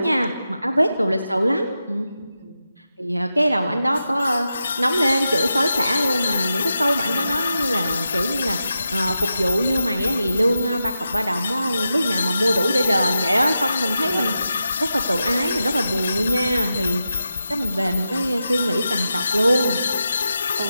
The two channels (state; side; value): inverted; both; correlation -0.89